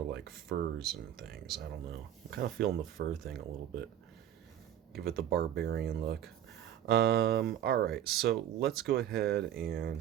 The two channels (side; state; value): left; quieter; 10.8 dB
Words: like furs and things? I don't know. I'm kind of feeling the fur thing a little bit. Give it the barbarian look. Alright, so let's go ahead